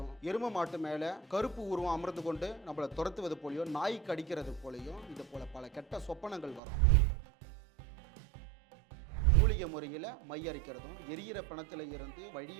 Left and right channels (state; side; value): drops out; left; at 6.6 s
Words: எரும மாட்டு மேலே கருப்பு உருவம் அமர்ந்து கொண்டு நம்மளை துரத்துவது போலையும், நாய் கடிக்கிறது போலையும், இது போல பல கெட்ட சொப்பனங்கள் வரும். மூலிகை முறையில் மை அரைக்கிறதும், எரியிற பணத்தில் இருந்து